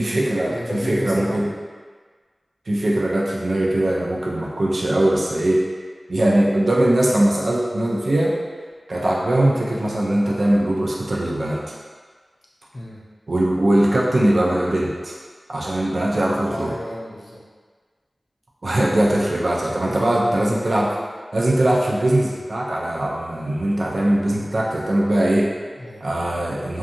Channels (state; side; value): normal; both; correlation 0.98